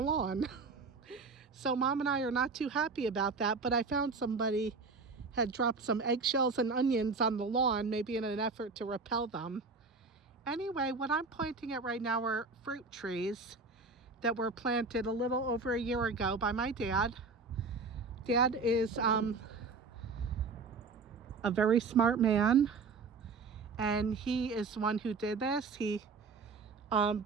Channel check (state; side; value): quieter; left; 4.2 dB